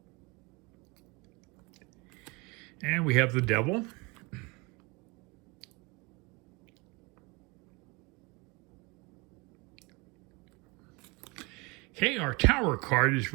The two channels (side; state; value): left; quieter; 27.0 dB